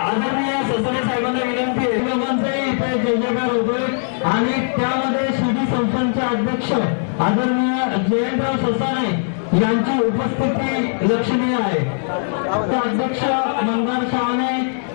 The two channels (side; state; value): right; silent; 66 dB below the other